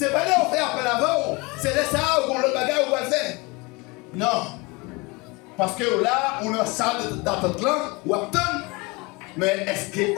pas là qu'on fait appel avant, c'est là ça qu'on le bagage ou va le faire. Non. Parce que là, on a une salle d'attente là, ou attend. Mais est-ce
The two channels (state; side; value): quieter; right; 26.0 dB